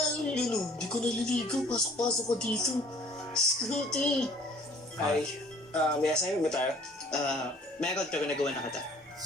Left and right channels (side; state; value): both; normal; correlation 0.55